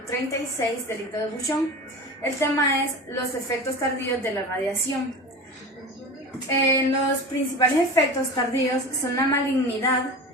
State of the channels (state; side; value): normal; both; correlation 0.32